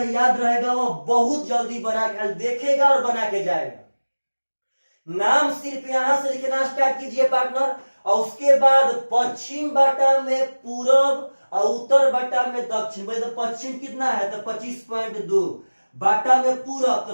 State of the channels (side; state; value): both; inverted; correlation -1.00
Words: याद रहेगा वह बहुत जल्दी बना के देखेगा और बना के जाएगा। नाम सिर्फ यहां से लिखना स्टार्ट कीजिए पार्टनर, और उसके बाद पश्चिम बाटा में पूरब और उत्तर बाटा में दक्षिण। भाई तो पश्चिम कितना है तो 25.2, बाटा में पूरब